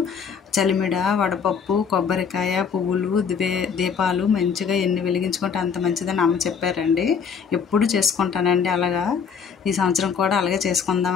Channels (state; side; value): quieter; right; 6.5 dB